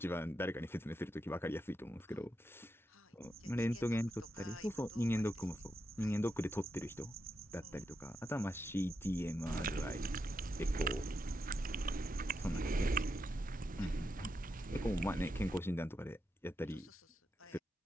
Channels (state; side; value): normal; both; correlation 0.85